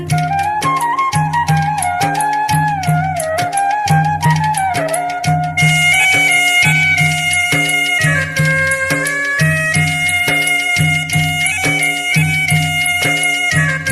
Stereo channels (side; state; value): both; identical; correlation 1.00